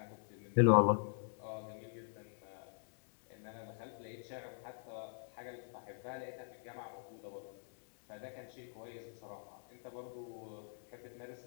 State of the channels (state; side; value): silent; right; digital silence